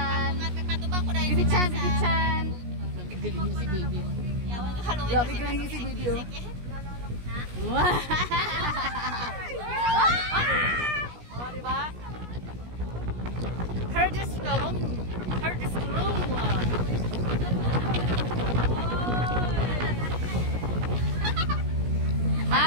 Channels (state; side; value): late; left; 17 ms